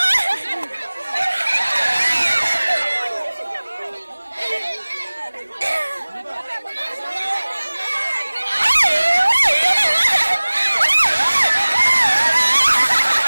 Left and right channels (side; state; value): both; inverted; correlation -1.00